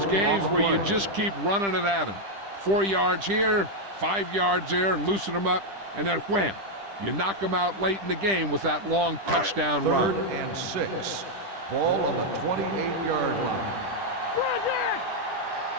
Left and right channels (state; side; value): late; left; 10 ms